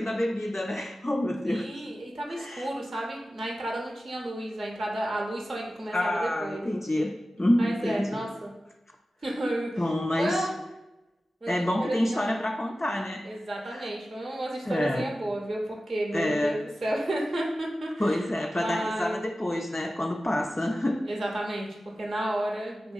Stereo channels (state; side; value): normal; both; correlation 0.95